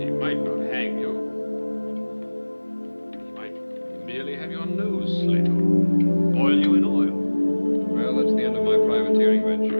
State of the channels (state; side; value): inverted; both; correlation -1.00